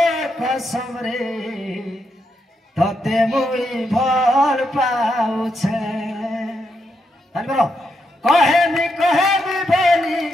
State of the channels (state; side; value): normal; both; correlation 0.81